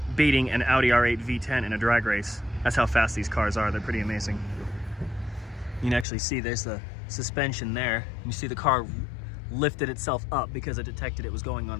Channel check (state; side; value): drops out; right; at 6.1 s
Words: beating an Audi R8 V10 in a drag race. That's how fast these cars are. They're pretty amazing. You can actually see there's the suspension there. You see the car lifted itself up because it detected it was going